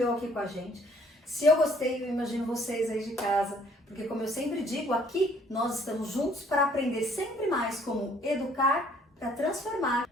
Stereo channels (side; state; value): both; normal; correlation 0.61